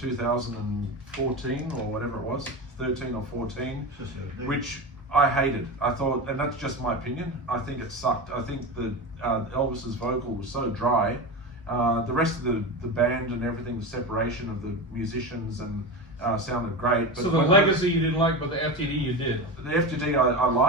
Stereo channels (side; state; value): both; normal; correlation 0.23